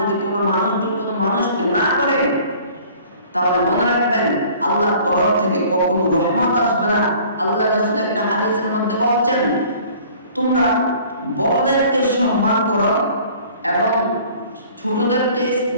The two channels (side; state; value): both; inverted; correlation -0.51